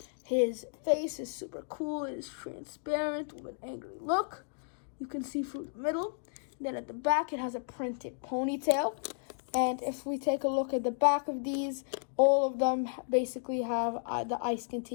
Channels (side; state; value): right; silent; digital silence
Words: His face is super cool. It is transparent with an angry look. You can see through the middle. Then at the back, it has a printed ponytail. And if we take a look at the back of these, all of them basically have the ice